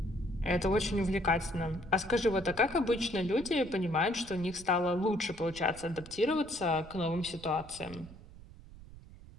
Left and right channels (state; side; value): noise; right; rumble, 18 dB below the sound